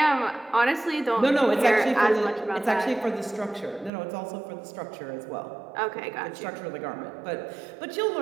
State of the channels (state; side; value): drops out; left; at 3.9 s